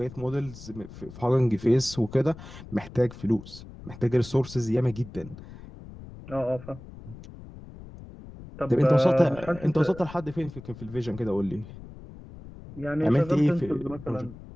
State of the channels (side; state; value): left; noise; rumble, 16 dB below the sound